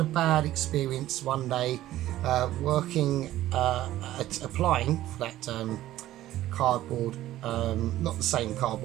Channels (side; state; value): left; quieter; 14.4 dB